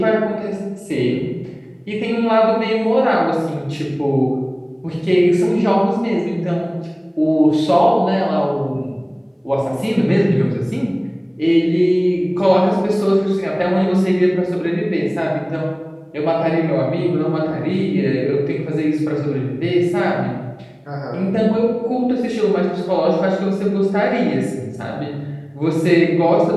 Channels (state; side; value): identical; both; correlation 1.00